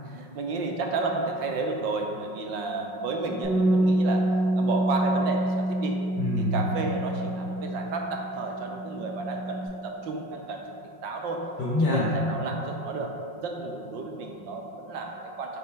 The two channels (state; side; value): late; left; 5.6 ms